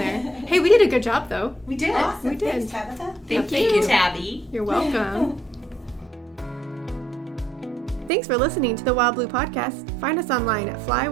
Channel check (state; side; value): drops out; left; at 8.1 s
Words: Hey, we did a good job, though. We did. Awesome. We did. Thanks, Tabitha. Thank you, Tabby. You're welcome. Thanks for listening to the Wildblue podcast. Find us online at